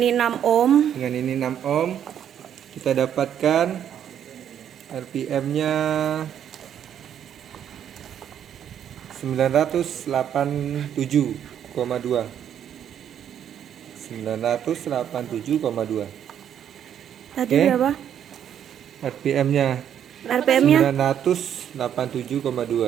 6 ohm. Dengan ini 6 ohm kita dapatkan RPM-nya 987,2. 987,2. Tadi Oke. berapa? RPM-nya RPM-nya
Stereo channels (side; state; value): left; quieter; 9.5 dB